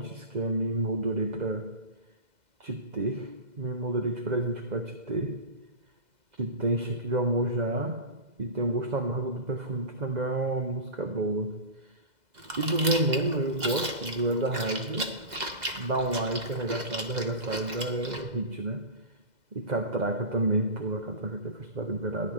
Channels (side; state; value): left; late; 2.0 ms